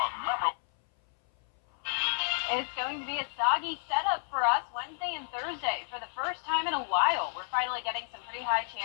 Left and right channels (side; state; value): right; silent; 57 dB below the other